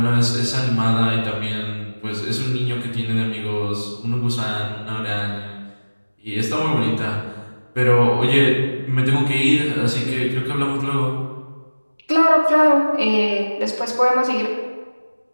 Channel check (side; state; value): both; inverted; correlation -1.00